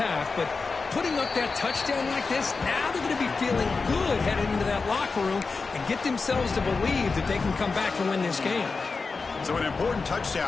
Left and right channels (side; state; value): right; quieter; 4.4 dB